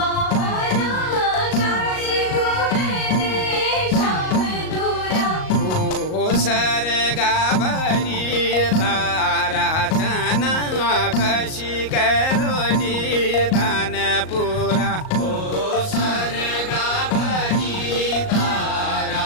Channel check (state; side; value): late; right; 38 ms